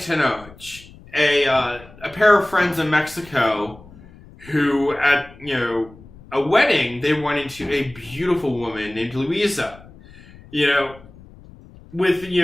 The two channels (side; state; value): left; noise; rumble, 22 dB below the sound